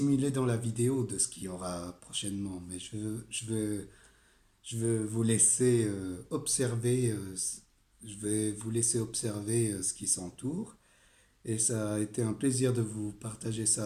dans la vidéo de ce qu'il y aura prochainement. Mais je veux vous laisser observer. Je vais vous laisser observer ce qui s'entoure. Et ça a été un plaisir de vous partager ça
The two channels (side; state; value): both; identical; correlation 1.00